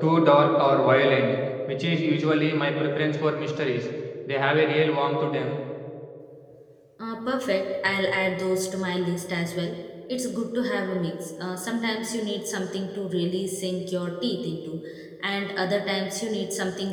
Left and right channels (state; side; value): identical; both; correlation 1.00